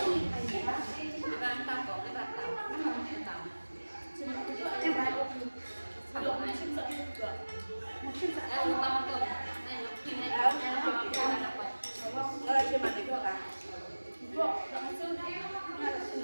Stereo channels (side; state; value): both; inverted; correlation -1.00